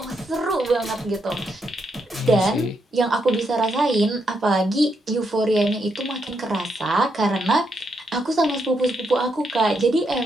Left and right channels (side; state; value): both; normal; correlation 0.79